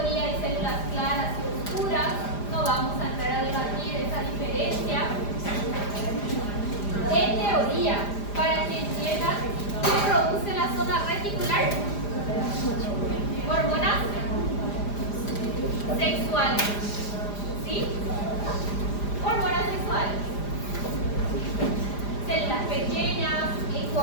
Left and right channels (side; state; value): right; late; 4.9 ms